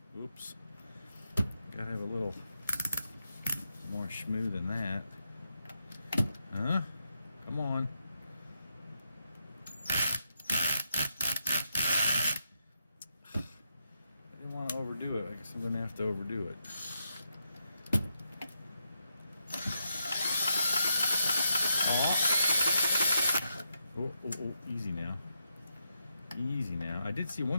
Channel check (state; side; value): inverted; both; correlation -0.83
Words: Oops. Gotta have a little more schmoo than that. Huh? Come on. I didn't want to overdo it. I guess I'm going to have to overdo it. Oh, easy now. Easy now. I did see